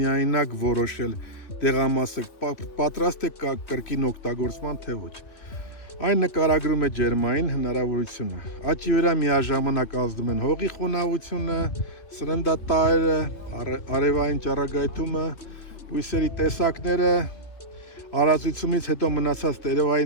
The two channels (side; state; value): right; late; 3.4 ms